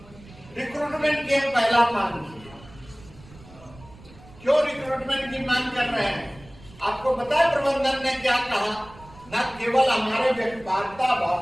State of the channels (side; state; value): right; noise; rumble, 22 dB below the sound